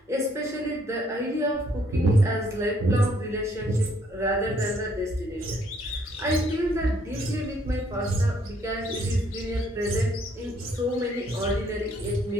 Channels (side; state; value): both; normal; correlation 0.66